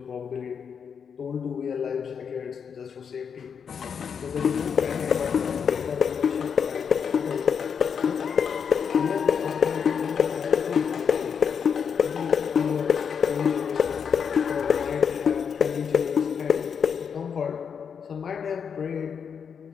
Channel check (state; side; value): quieter; right; 6.9 dB